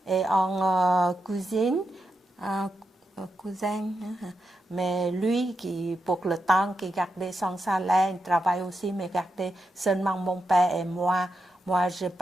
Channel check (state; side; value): normal; both; correlation 0.86